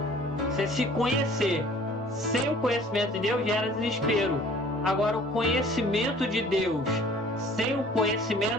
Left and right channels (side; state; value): both; normal; correlation 0.51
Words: você se conhecer sem o conhecimento de Deus gera desespero. Agora, o conhecimento de Deus sem o